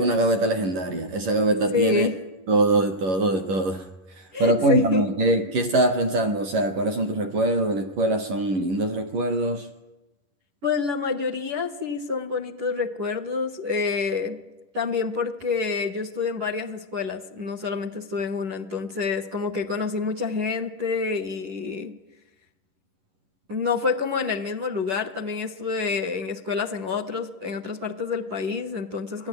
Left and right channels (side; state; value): left; late; 11 ms